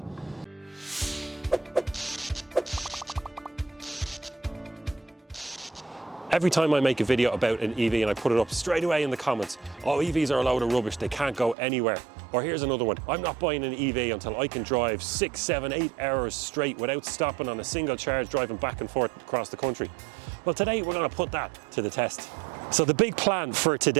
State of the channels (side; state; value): left; drops out; at 11.6 s